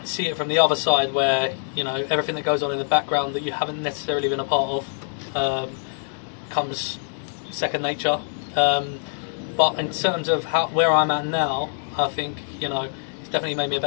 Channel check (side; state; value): right; silent; digital silence